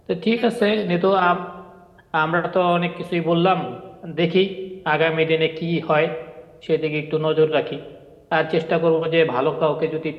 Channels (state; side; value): identical; both; correlation 1.00